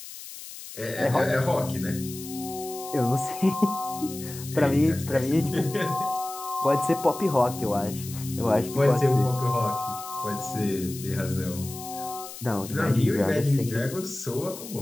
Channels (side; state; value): left; noise; hiss, 13 dB below the sound